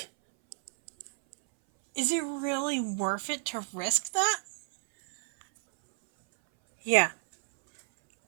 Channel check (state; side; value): silent; left; 58 dB below the other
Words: Is it really worth it to risk that? Yeah,